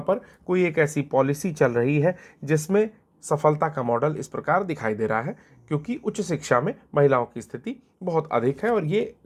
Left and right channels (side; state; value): both; identical; correlation 1.00